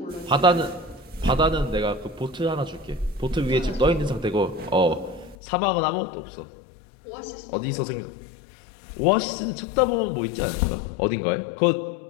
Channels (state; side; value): drops out; right; at 5.4 s